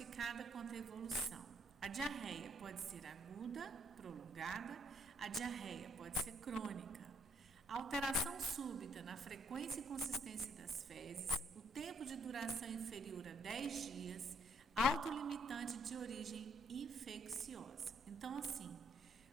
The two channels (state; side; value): normal; both; correlation 0.69